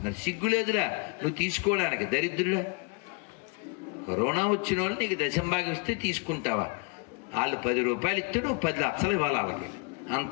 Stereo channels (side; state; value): right; quieter; 32.7 dB